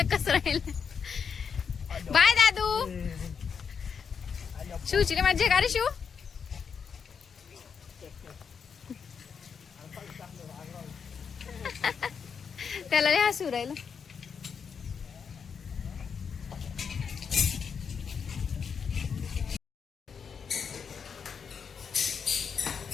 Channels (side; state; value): right; quieter; 6.4 dB